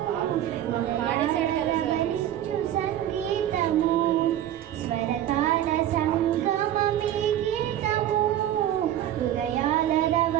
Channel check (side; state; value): left; quieter; 11.7 dB